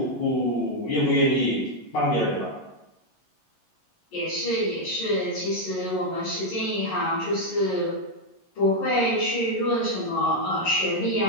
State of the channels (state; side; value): late; right; 11 ms